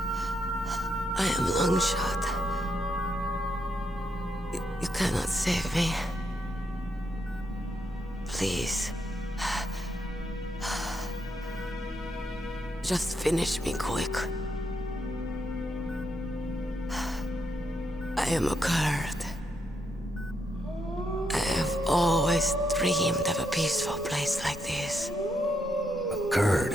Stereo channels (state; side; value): normal; both; correlation 0.79